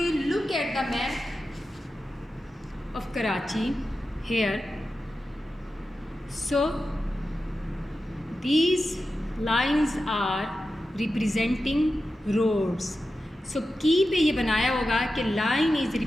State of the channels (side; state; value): both; normal; correlation 0.92